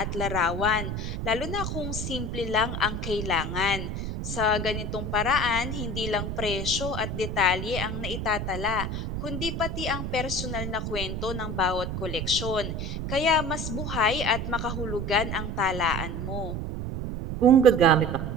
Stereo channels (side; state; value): right; noise; rumble, 4 dB below the sound